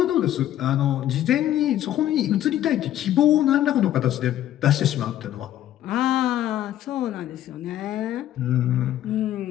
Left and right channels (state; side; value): quieter; right; 12.5 dB